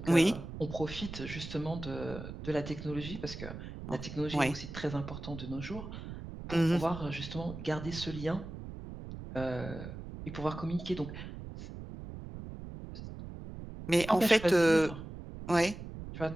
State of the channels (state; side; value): noise; right; rumble, 10 dB below the sound